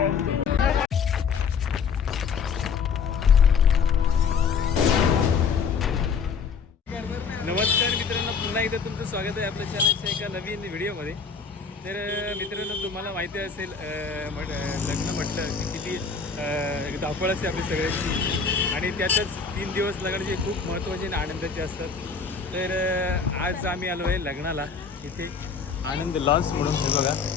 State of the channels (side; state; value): right; quieter; 5.7 dB